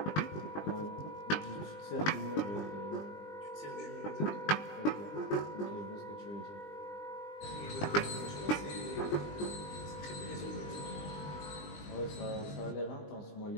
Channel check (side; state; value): right; late; 20 ms